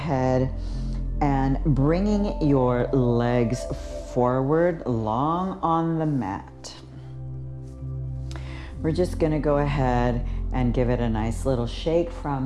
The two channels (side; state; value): both; identical; correlation 1.00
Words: and bringing your legs forward, long on the mat. We're just gonna go ahead and give it a nice little shake